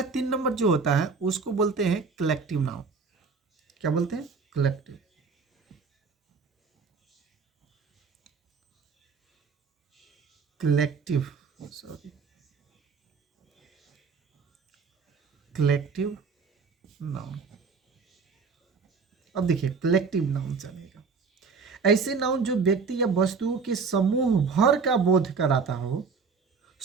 3 नंबर जो होता है उसको बोलते हैं कलेक्टिव नाउन। क्या बोलते हैं, collective. Collective, sorry, collective noun. अब देखिए कलेक्टिव नाउन चलेगा, ऐसे नाउन जो व्यक्ति या वस्तुओं के समूह भर का बोध कराता हो,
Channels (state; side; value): quieter; left; 5.1 dB